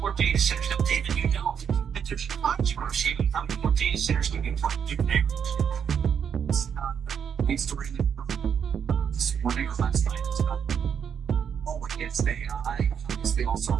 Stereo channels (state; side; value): quieter; left; 7.7 dB